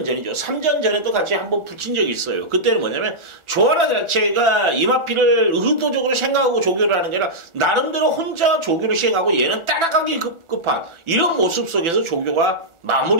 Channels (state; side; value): late; left; 1.4 ms